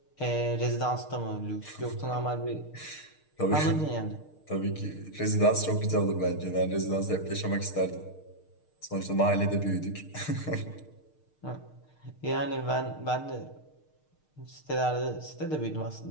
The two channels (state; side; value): late; right; 6.6 ms